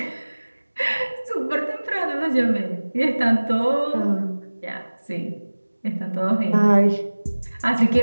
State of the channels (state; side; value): inverted; both; correlation -1.00